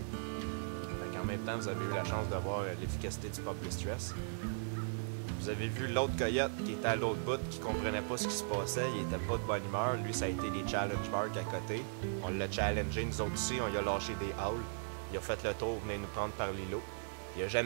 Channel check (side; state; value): left; silent; digital silence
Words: En même temps, vous avez eu la chance de voir l'efficacité du pop distress. Vous avez vu l'autre coyote qui était à l'autre bout, qui comprenait pas ce qui se passait, il était pas de bonne humeur. Lui, ça a été les challenge marks à côté. On l'a challengé, nous autres aussi, on lui a lâché des howls. Il a fait le tour, venait nous prendre par l'îlot. Il a